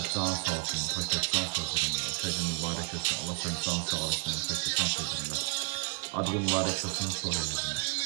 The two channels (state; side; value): quieter; left; 31.6 dB